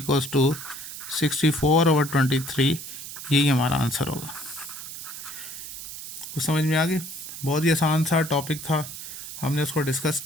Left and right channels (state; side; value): noise; right; hiss, 10 dB below the sound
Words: टू 64/23। यही हमारा आंसर होगा। कुछ समझ में आ गई? बहुत ही आसान सा टॉपिक था, हमने उसको डिस्कस